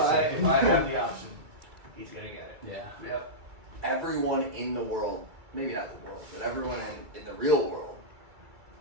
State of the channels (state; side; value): late; left; 2.3 ms